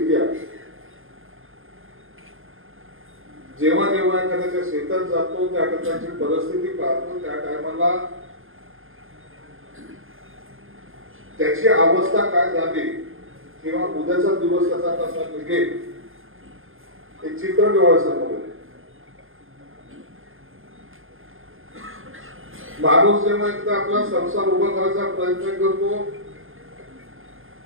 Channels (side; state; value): left; late; 0.60 ms